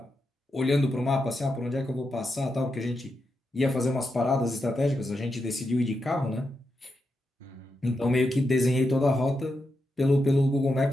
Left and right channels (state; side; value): normal; both; correlation 0.86